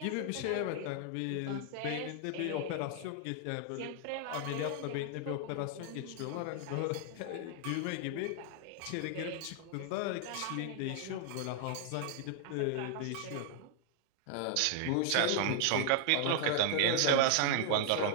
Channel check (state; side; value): different; both; correlation 0.00